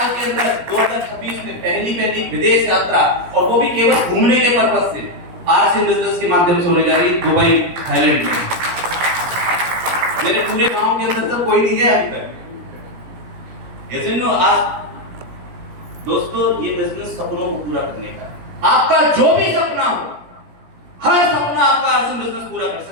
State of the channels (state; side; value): late; left; 17 ms